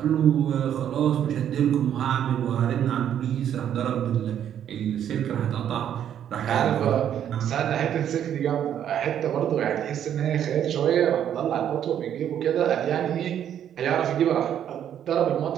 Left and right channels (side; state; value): left; quieter; 9.9 dB